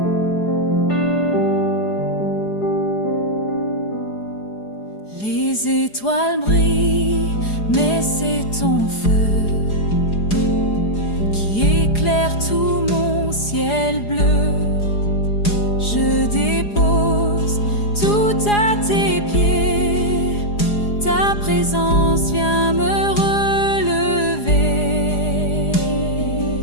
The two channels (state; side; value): late; right; 4.8 ms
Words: Les étoiles brillent, mais c'est ton feu qui éclaire tout mon ciel bleu. Je dépose tout à tes pieds, ta présence vient me relever.